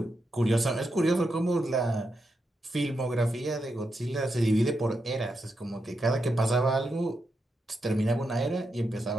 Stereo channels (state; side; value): normal; both; correlation 0.85